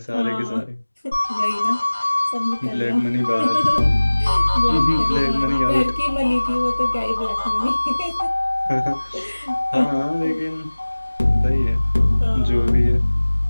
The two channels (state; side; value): inverted; both; correlation -1.00